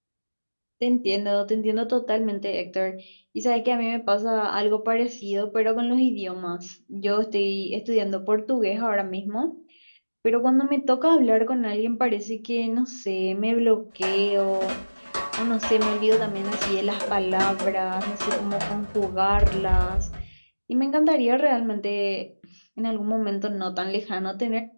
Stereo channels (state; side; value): inverted; both; correlation -1.00